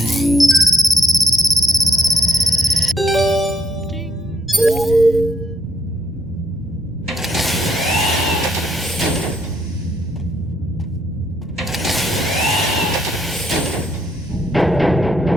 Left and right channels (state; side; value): normal; both; correlation 0.75